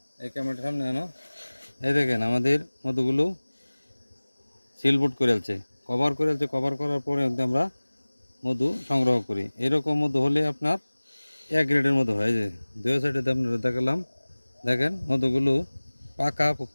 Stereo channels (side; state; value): both; inverted; correlation -1.00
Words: এই ক্যামেরার সামনে আনো, এই দেখেন আমাদের মধুগুলো সিলবোর্ড করেছে, কভার করেছে। কভার করার পরে আমরা মধু সংগ্রহ করি। এরকম মধু হলে আপনার এক গ্রেডের মধু হয়। যে দুই সাইডে আপনারা দেখালাম, দেখেন মধুগুলো পাকা